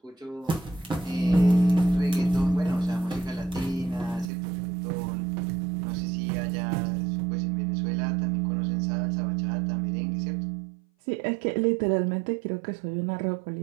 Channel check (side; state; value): left; drops out; at 4.3 s